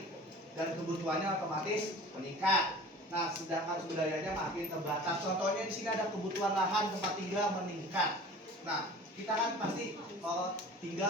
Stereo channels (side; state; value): both; normal; correlation 0.42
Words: dan kebutuhannya otomatis meningkat. Nah, sedangkan sumber dayanya makin terbatas. Contohnya di sini ada kebutuhan lahan tempat tinggal meningkat. Nah, kita kan pasti kalau